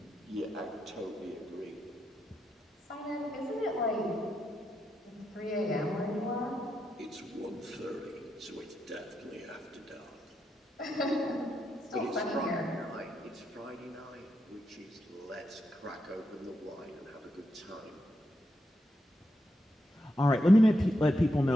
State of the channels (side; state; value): both; normal; correlation 0.84